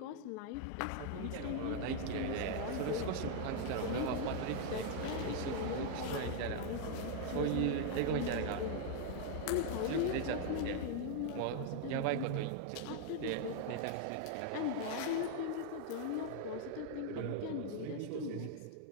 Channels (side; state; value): both; different; correlation 0.00